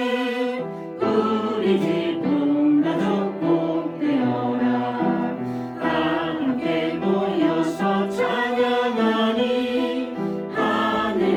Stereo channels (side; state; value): both; identical; correlation 1.00